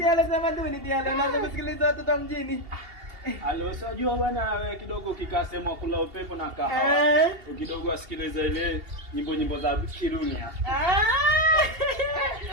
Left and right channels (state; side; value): late; left; 2.8 ms